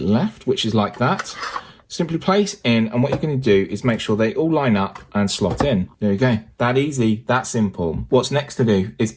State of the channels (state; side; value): identical; both; correlation 1.00